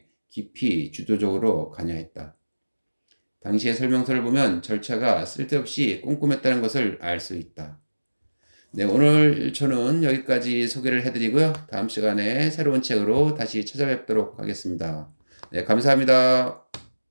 깊이 주도적으로 관여했다. 당시의 설명서를 보면 절차가 쓸데없이 꼼꼼했다는 것을 알 수 있다. 네, 오늘 저는 여기까지 소개를 해드리고요. 다음 시간에 새로운 책으로 다시 찾아뵙도록 하겠습니다. 네, 감사합니다.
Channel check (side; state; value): both; inverted; correlation -1.00